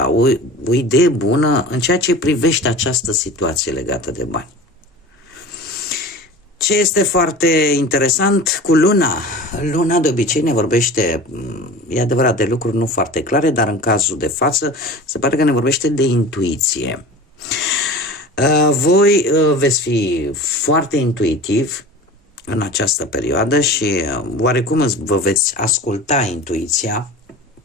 o idee bună în ceea ce privește această situație legată de bani. Ce este foarte interesant cu luna? Luna de obicei ne vorbește, e adevărat, de lucruri nu foarte clare, dar în cazul de față se pare că ne vorbește de intuiție. Voi veți fi foarte intuitiv în această perioadă și oarecum vă veți asculta intuiția.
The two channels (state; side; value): normal; both; correlation 0.36